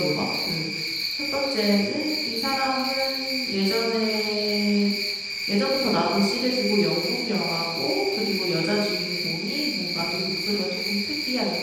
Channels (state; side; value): identical; both; correlation 1.00